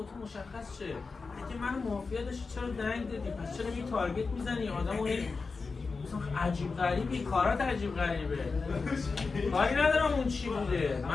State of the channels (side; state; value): right; quieter; 4.4 dB